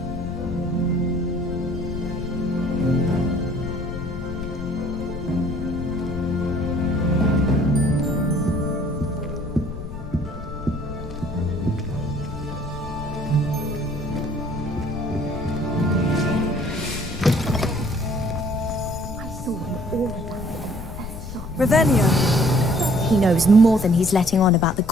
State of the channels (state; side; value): noise; left; rumble, 10 dB below the sound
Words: Revelio. He knows more than he's letting on about the